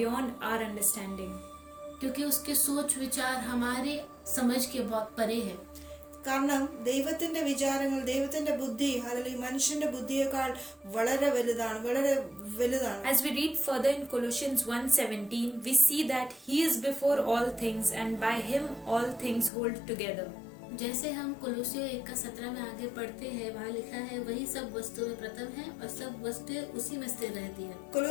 our understanding. क्योंकि उसके सोच विचार हमारे समझ के बहुत परे है. കാരണം ദൈവത്തിന്റെ വിചാരങ്ങൾ, ദൈവത്തിന്റെ ബുദ്ധി അല്ലെങ്കിൽ മനുഷ്യന്റെ ബുദ്ധിയേക്കാൾ വളരെ വലുതാണ്. As we read further in Colossians 1:17, we see that he is before all things and by him all things hold together. जैसे हम कोलोसियों 1:17 में आगे पढ़ते हैं, वहाँ लिखा है, वही सब वस्तुएं प्रथम है और सब वस्तुएं उसी में स्थिर रहती है.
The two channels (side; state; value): right; drops out; at 19.5 s